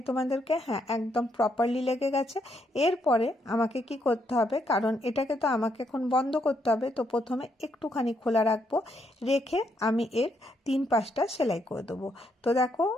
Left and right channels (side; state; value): both; normal; correlation 0.76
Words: তোমাদেরকে, হ্যাঁ একদম প্রপারলি লেগে গেছে। এরপরে আমাকে কি করতে হবে, কারণ এটাকে তো আমাকে এখন বন্ধ করতে হবে, তো প্রথমে একটুখানি খোলা রাখবো, রেখে আমি এর 3 পাশটা সেলাই করে দেবো। তো দেখো